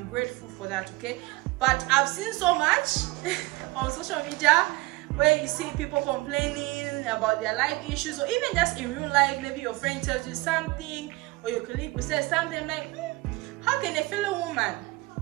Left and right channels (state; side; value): quieter; left; 21.7 dB